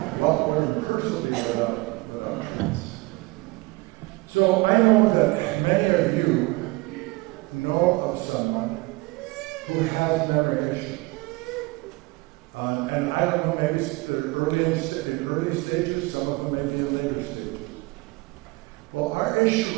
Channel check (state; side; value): quieter; left; 24.0 dB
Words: What word person without treats? So I know that many of you know of someone who has memory issues. And I don't know, maybe they're in early stages, some of them may be in later stages. Well, our